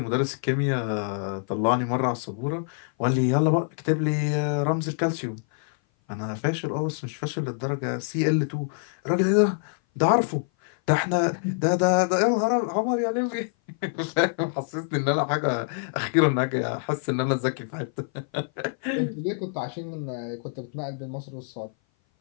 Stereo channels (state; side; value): silent; right; 57 dB below the other